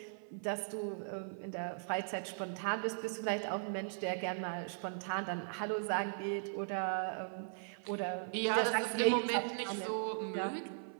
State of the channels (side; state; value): left; silent; 52 dB below the other